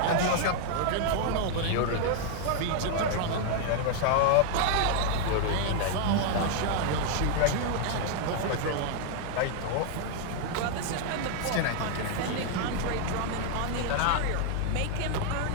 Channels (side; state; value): both; different; correlation 0.00